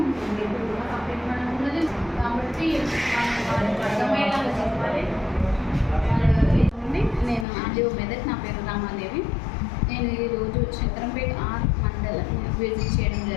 పబ్లిక్ మనం ఉన్నది కాబట్టి వాళ్ళకి అర్థమయ్యేలాగా చెప్పాలి. నేను ఆర్డీఓ మెదక్, నా పేరు రామాదేవి. నేను ఈరోజు శంకరంపేట మండలం విజిట్ చేయడం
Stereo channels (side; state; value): right; drops out; at 7.5 s